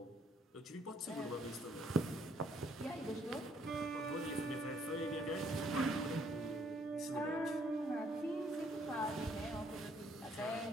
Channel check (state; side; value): normal; both; correlation 0.66